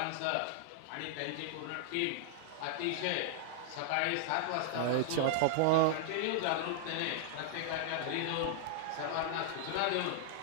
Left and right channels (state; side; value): different; both; correlation -0.01